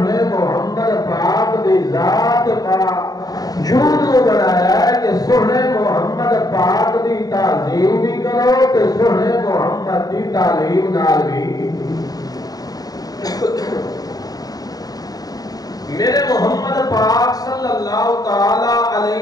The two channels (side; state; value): right; late; 0.18 ms